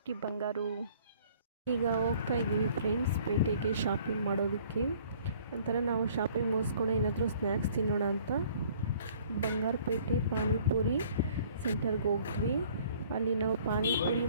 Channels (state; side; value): inverted; both; correlation -0.56